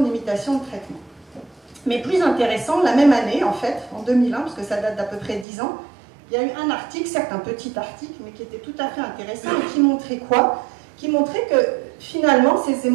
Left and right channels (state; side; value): drops out; left; at 5.5 s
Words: de limitation de traitement. Mais plus intéressant, la même année, en fait, en 2001, parce que ça date d'à peu près 10 ans, il y a eu un article, certes un petit article, mais qui était tout à fait intéressant, et qui montrait quoi? Qui montrait que finalement, ces